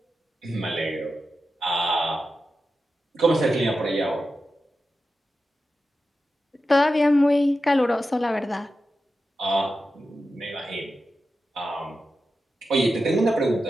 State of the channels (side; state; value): both; normal; correlation 0.91